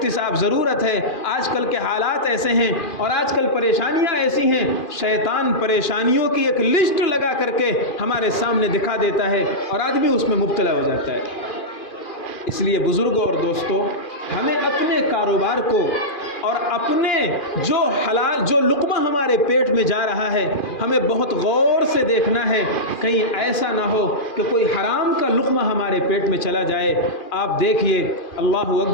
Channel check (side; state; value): right; late; 2.4 ms